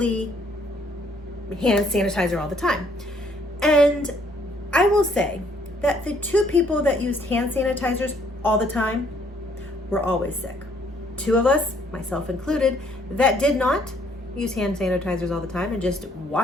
hand sanitizer all the time. And I will say that the 2 people that used hand sanitizers all the time were always sick. 2 of us, myself included, that did not use hand sanitizers all the time and just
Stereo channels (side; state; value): both; normal; correlation 0.65